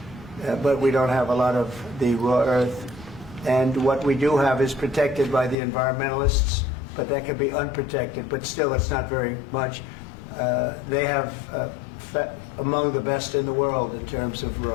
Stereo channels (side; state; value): right; drops out; at 5.6 s